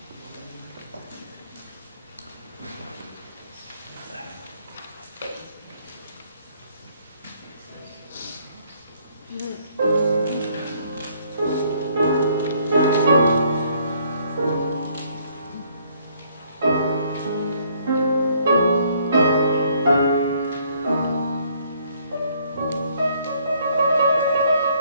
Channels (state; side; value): inverted; both; correlation -0.65